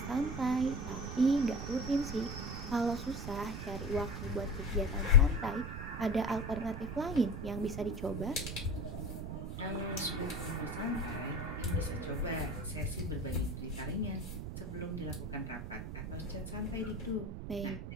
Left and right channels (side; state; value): right; noise; rumble, 6 dB below the sound